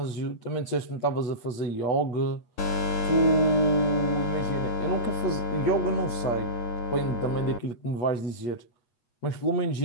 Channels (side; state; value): right; late; 8.4 ms